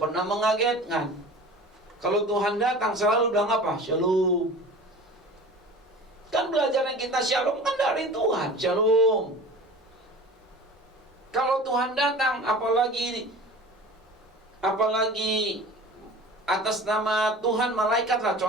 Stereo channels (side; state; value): both; normal; correlation 0.39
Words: pernah mengagetkan. Kalau Tuhan datang selalu bilang apa? Shalom. Kan belajarnya kita shalom kan dari Tuhan. Shalom. Kalau Tuhan datang apalagi atas nama Tuhan malaikat lah